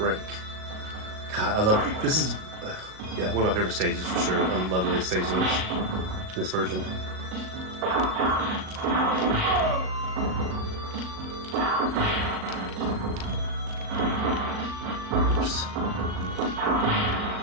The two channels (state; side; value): late; left; 38 ms